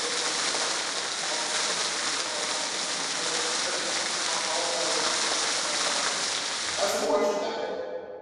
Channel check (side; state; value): both; identical; correlation 1.00